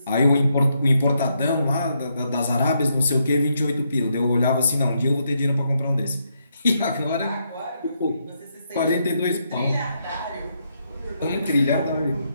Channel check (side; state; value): both; inverted; correlation -0.78